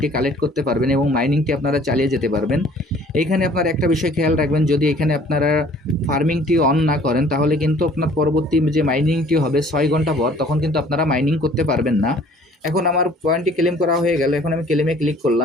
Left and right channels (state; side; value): normal; both; correlation 0.54